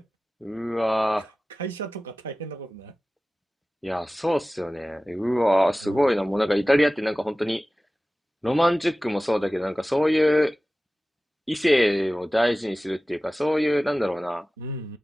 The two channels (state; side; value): normal; both; correlation 0.97